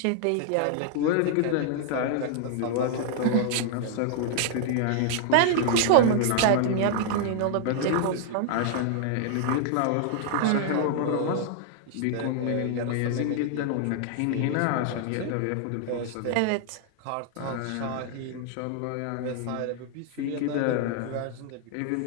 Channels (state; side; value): different; both; correlation 0.00